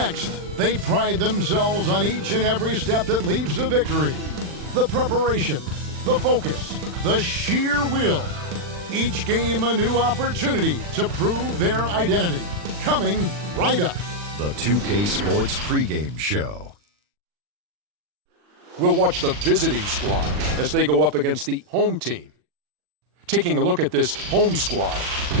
they pride themselves on each and every step that leads to victory. The preparation, the focus, the sheer will. Each game a new opportunity to prove their identity. Coming right up. The 2K Sports pregame show. We'll watch the visiting squad as they go up against the home team. Taking a look at this home squad,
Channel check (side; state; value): left; late; 40 ms